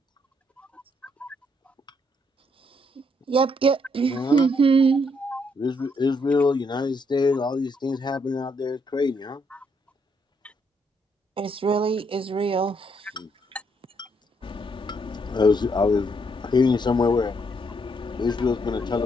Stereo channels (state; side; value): normal; both; correlation 0.73